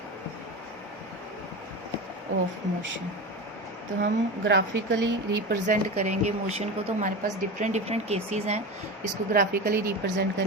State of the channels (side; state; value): both; normal; correlation 0.25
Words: of motion. तो हम ग्राफिकली रिप्रेजेंट करेंगे मोशन को। तो हमारे पास डिफरेंट केसेस हैं इसको ग्राफिकली रिप्रेजेंट